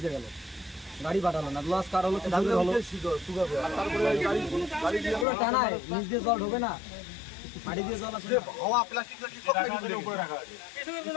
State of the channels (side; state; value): right; drops out; at 5.2 s